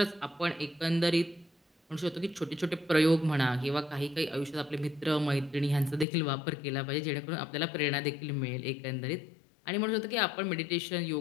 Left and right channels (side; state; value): right; drops out; at 6.1 s